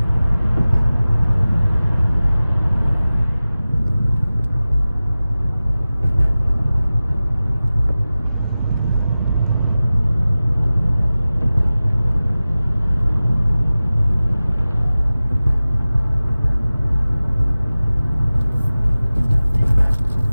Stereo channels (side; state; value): both; inverted; correlation -0.97